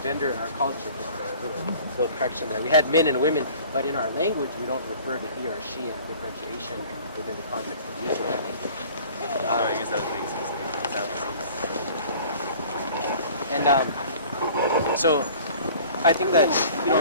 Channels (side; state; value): both; inverted; correlation -0.48